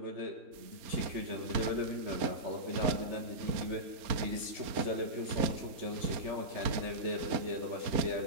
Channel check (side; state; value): left; late; 4.2 ms